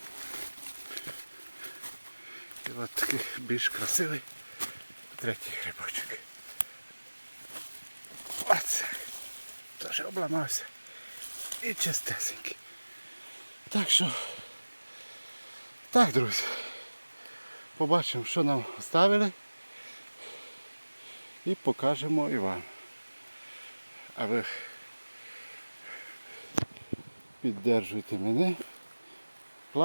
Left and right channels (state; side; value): inverted; both; correlation -1.00